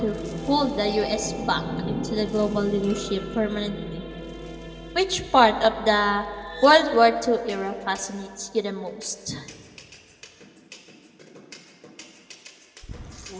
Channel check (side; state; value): both; identical; correlation 1.00